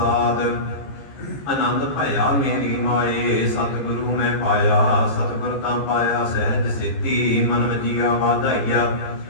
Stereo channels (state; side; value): late; right; 15 ms